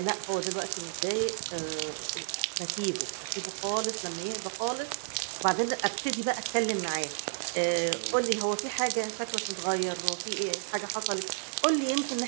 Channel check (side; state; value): left; silent; digital silence